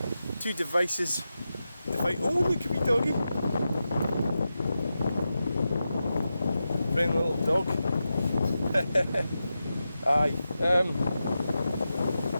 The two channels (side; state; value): both; inverted; correlation -0.91